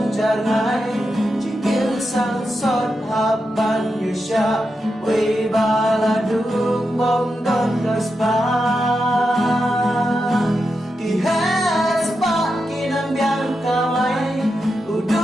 jarngay Jigil sang sot hapan yu siya Way baladung bongdon kaspa Kihes pa kinambiang kamay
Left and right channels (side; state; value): both; normal; correlation 0.87